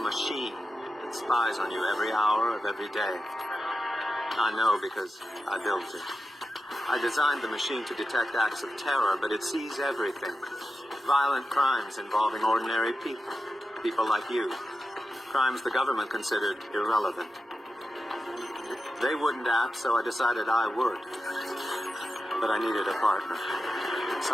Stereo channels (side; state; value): both; normal; correlation 0.91